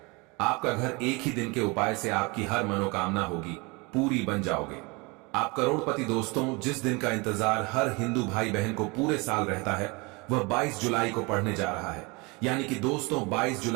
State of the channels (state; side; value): quieter; left; 27.3 dB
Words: आपका घर एक ही दिन के उपाय से आपकी हर मनोकामना होगी पूरी बन जाओगे। आप करोड़पति। दोस्तों, जिस दिन का इंतजार हर हिंदू भाई बहन को पूरे साल रहता है वह 22 जुलाई को पड़ने जा रहा है। यानी कि दोस्तों, 22